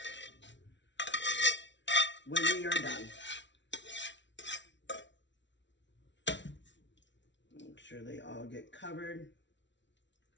when we are done. Make sure they all get covered.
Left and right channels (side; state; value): right; late; 0.53 ms